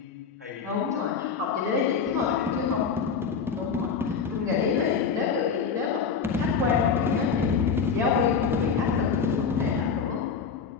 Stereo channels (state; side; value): quieter; right; 6.0 dB